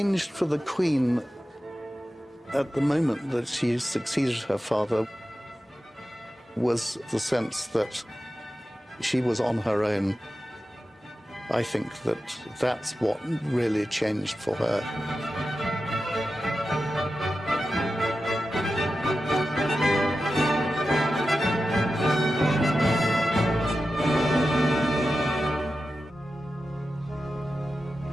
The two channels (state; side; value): normal; both; correlation 0.92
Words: for the Queen at the moment that she succeeded her father was the sense that she was on her own. I think that that's what really changed for her.